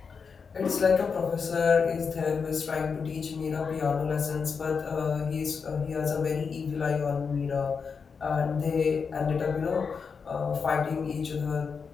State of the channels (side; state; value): right; quieter; 5.6 dB